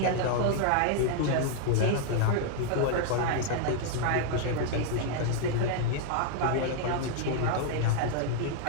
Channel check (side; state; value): both; different; correlation 0.00